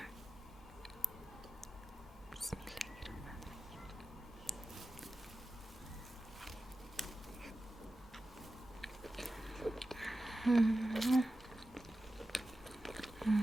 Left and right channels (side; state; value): both; normal; correlation 0.94